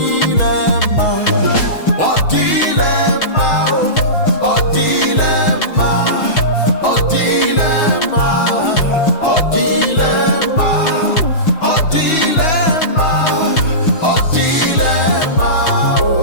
mma. Ọ dịghịla mma, ọ dịghịla mma, ọ dịghịla mma, ọ dịghịla mma, ọ dịghịla mma, ọ dịghịla mma.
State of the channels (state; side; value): late; right; 6.2 ms